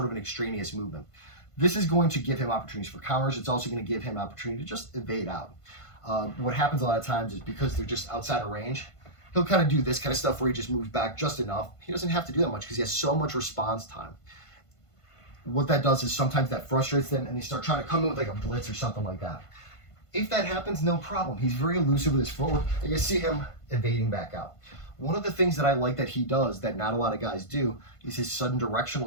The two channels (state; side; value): late; right; 1.5 ms